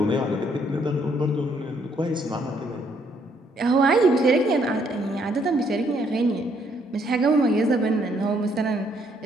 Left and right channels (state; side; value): normal; both; correlation 0.69